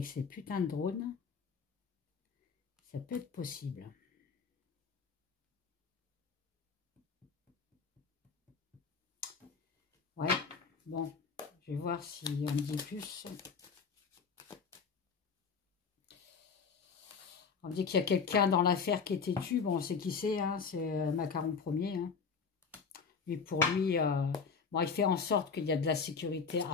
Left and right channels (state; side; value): quieter; right; 5.6 dB